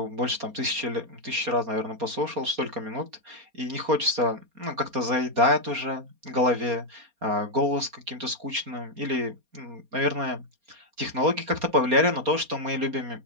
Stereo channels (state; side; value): late; left; 4.3 ms